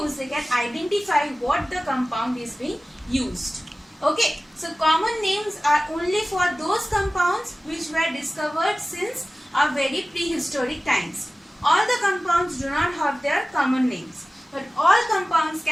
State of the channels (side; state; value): both; normal; correlation 0.96